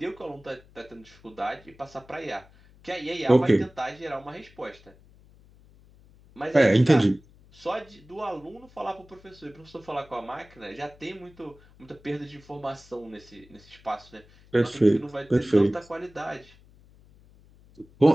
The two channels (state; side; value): noise; left; hum, 26 dB below the sound